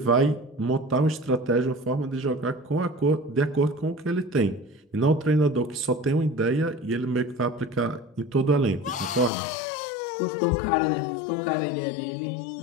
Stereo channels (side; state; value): right; drops out; at 9.3 s